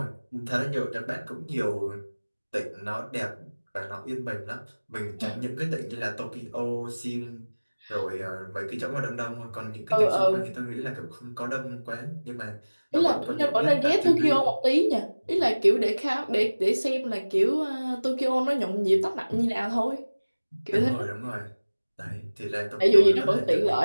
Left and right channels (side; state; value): both; inverted; correlation -1.00